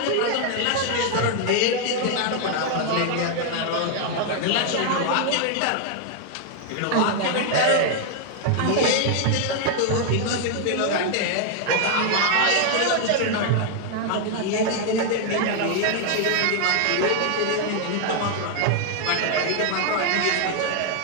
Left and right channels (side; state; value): both; different; correlation 0.00